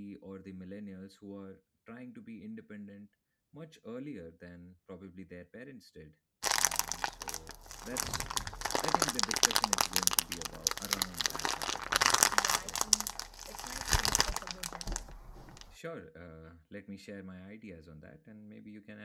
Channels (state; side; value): identical; both; correlation 1.00